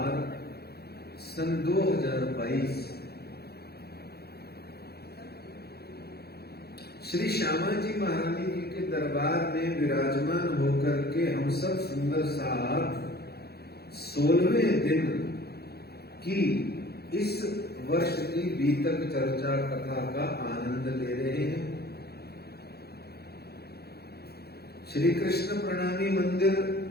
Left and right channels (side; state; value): right; late; 0.46 ms